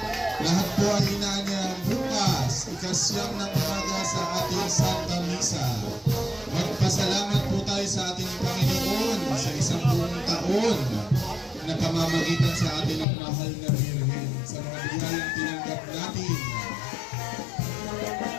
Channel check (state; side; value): drops out; right; at 13.1 s